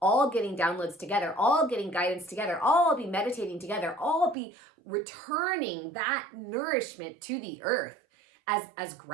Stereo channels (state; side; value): drops out; left; at 4.4 s